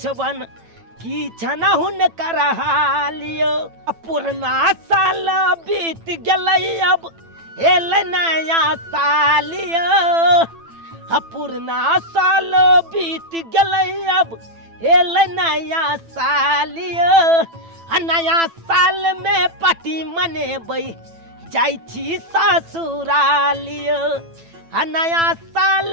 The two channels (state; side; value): late; left; 9.0 ms